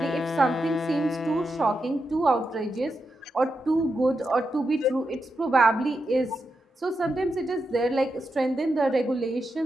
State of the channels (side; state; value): both; normal; correlation 0.86